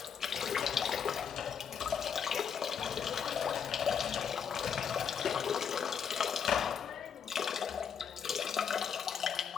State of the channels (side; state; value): right; quieter; 7.3 dB